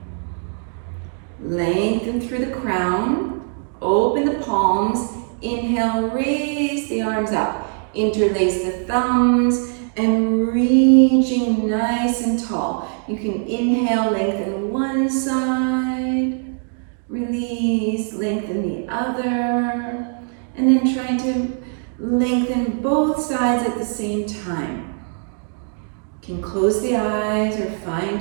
Lengthen through the crown, open the palms, inhale, raise the arms up, interlace the thumbs, and reaching nice and tall. You can inhale, lengthen one side, release, lengthen the other, and then trying to lengthen both sides at the same time. You can close the eyes or find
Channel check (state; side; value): silent; left; 56 dB below the other